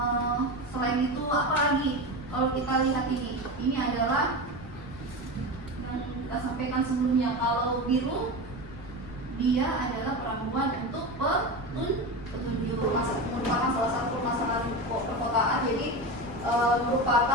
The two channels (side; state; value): left; noise; rumble, 15 dB below the sound